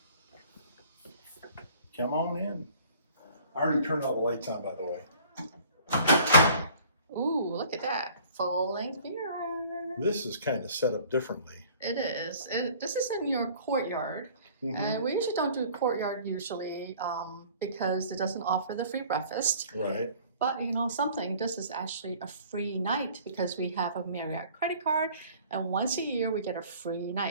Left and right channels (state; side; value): inverted; both; correlation -0.51